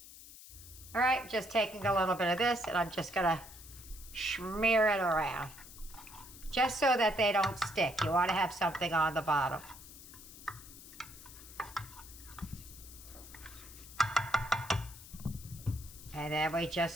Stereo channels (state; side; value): noise; left; hiss, 17 dB below the sound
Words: All right, just taking a little bit of this and I'm just gonna smear it around. Just so that they don't stick. You want to have something on the bottom. And then we just